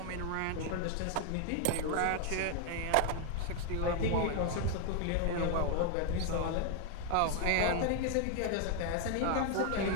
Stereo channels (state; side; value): different; both; correlation 0.00